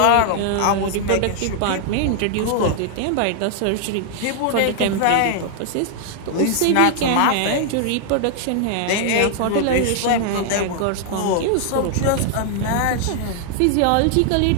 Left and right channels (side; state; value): both; different; correlation 0.00